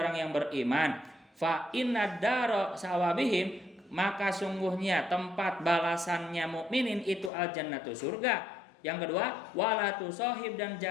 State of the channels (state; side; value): drops out; right; at 7.3 s